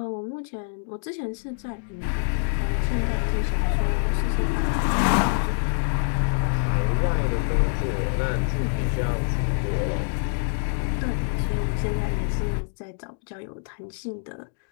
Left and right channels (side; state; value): right; silent; digital silence